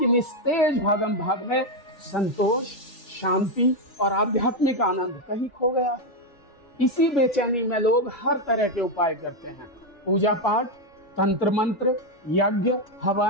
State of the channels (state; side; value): late; right; 3.4 ms